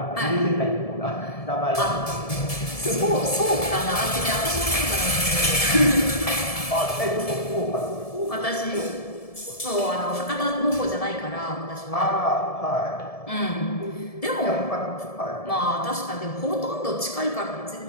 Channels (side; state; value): right; late; 1.7 ms